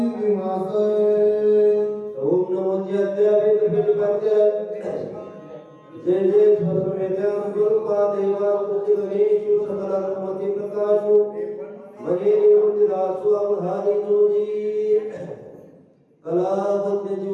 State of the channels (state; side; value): identical; both; correlation 1.00